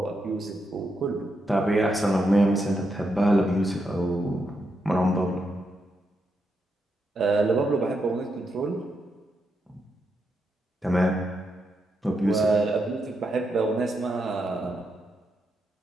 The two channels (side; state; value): both; normal; correlation 0.83